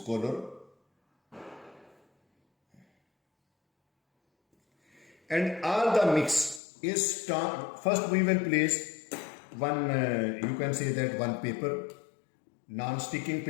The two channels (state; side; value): drops out; right; at 6.6 s